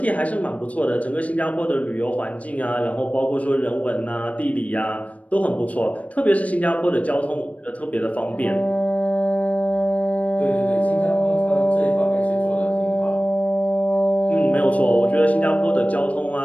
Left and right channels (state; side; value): late; right; 0.067 ms